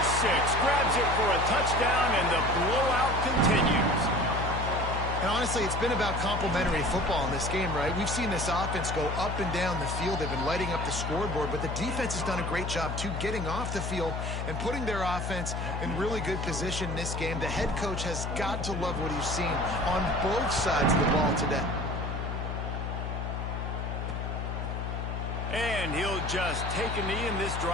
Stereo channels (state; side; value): noise; left; hum, 3 dB below the sound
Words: 6. Grabs it for a touchdown, and the blowout continues. And honestly, it's been about complementary football in this game, right? We've seen this offense go up and down the field. They've been lighting up the scoreboard, but the defense has done a great job, too, getting off the field and putting their offense in really good position in this game. The head coach has got to love what he's seen on both sides of the ball today. And he'll just take a knee, and this